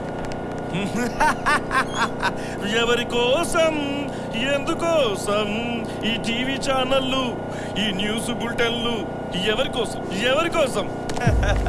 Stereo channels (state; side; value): identical; both; correlation 1.00